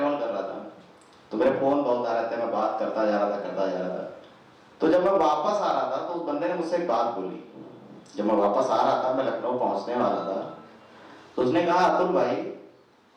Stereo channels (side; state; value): both; identical; correlation 1.00